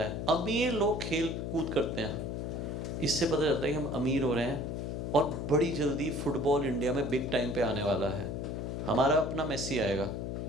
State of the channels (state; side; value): noise; left; hum, 4 dB below the sound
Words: अमीर लोग खेल कूद करते हैं, इससे पता चलता है कि हम अमीर हो रहे हैं, और बड़ी जल्दी फुटबॉल इंडिया में बिग टाइम पे आने वाला है। हमारा अपना मेसी आएगा,